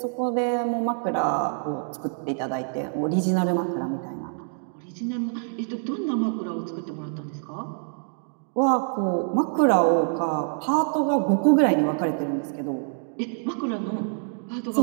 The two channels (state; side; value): silent; left; 61 dB below the other